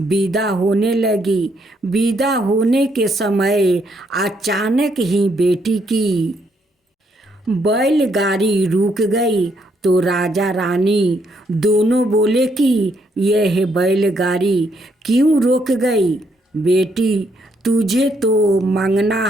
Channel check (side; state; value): both; normal; correlation 0.73